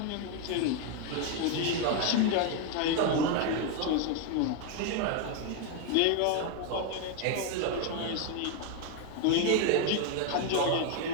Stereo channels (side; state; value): both; different; correlation 0.01